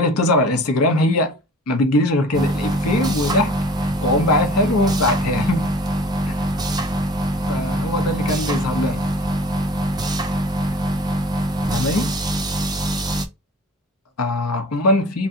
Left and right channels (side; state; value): both; normal; correlation 0.45